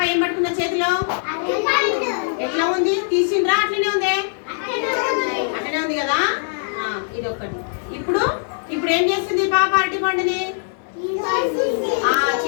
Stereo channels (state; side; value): silent; right; 65 dB below the other